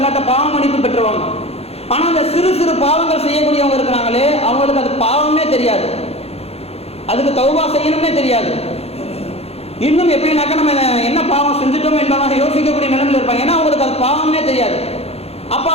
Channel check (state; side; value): late; right; 0.29 ms